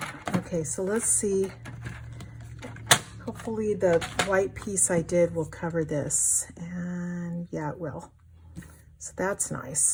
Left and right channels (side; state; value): both; identical; correlation 1.00